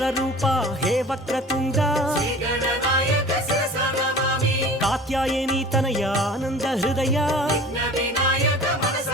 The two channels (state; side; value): normal; both; correlation 0.42